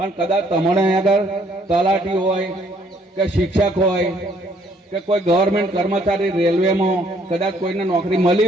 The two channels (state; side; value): normal; both; correlation 0.65